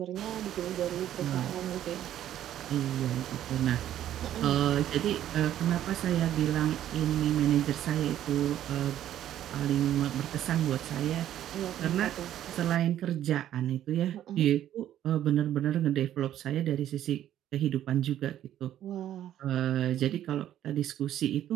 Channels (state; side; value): quieter; left; 11.7 dB